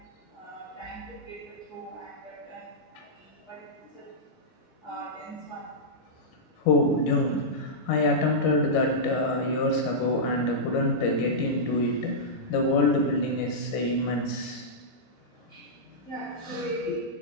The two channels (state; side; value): normal; both; correlation -0.12